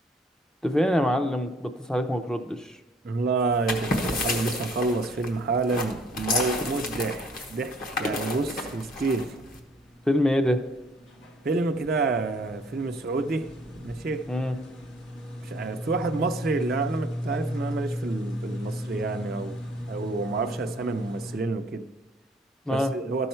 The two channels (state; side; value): normal; both; correlation 0.59